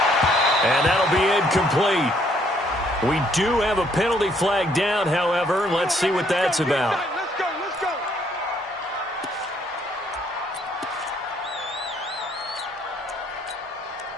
And that'll be incomplete. We do have a penalty flag down, however. Let's see what that's about. Let's go, let's go.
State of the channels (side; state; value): both; normal; correlation 0.67